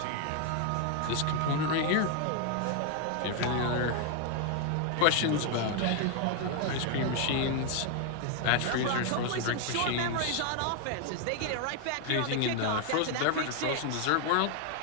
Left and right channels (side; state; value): both; different; correlation 0.00